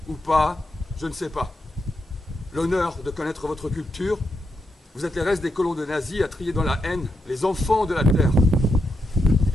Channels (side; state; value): both; normal; correlation 0.84